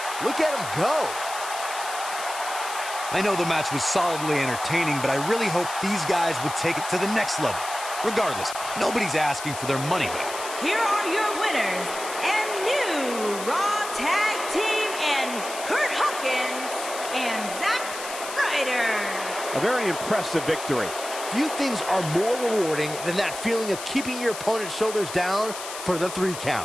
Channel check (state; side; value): noise; left; hiss, 9 dB below the sound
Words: Look at him go. I know the match was solidly entertaining, but I really hope these guys would take it to the next level. Regardless, nobody's asking for their money back. Here are your winners and new Raw Tag Team and Curt Hawkins and Zack Ryder. A very impressive victory. Few things are more rewarding than that feeling of keeping your opponent's shoulders down for the 3